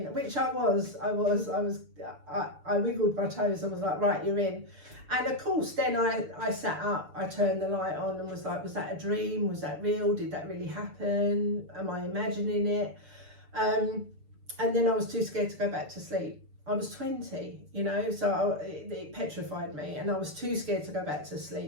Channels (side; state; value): left; late; 6.8 ms